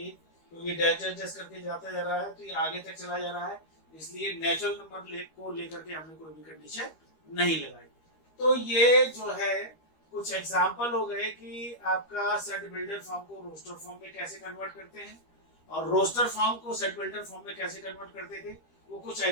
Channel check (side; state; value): right; late; 13 ms